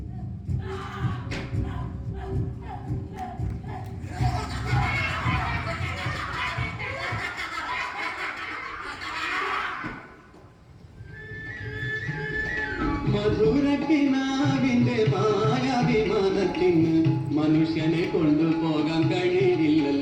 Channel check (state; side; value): identical; both; correlation 1.00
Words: മധുരക്കിനാവിന്റെ മായാവിമാനത്തിന് മനുഷ്യനെ കൊണ്ടുപോകാൻ